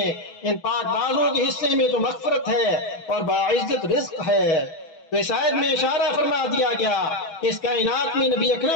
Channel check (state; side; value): late; right; 6.2 ms